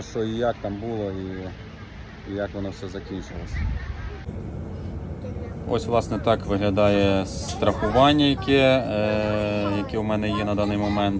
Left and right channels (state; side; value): identical; both; correlation 1.00